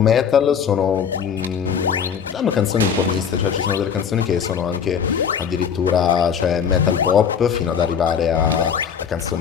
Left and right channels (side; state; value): right; quieter; 7.3 dB